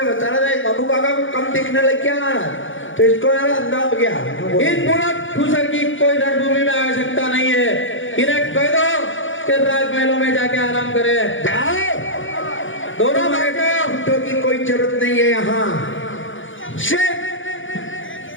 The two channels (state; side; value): late; right; 0.57 ms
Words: बता रहा था बाबू काका को कम दिखने लग गया महाराज, तो इसको यार अंधा हो गया। इन बुढ़ा ठूसर की कोई रणभूमि में आवश्यकता नहीं है। इन्हें कह दो कि राजमहलों में जाके आराम करे। जाओ, दोनों घंटों की कोई जरूरत नहीं है यहाँ। सिर्फ